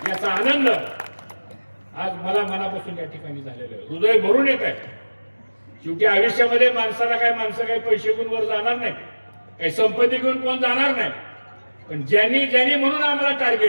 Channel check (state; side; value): inverted; both; correlation -1.00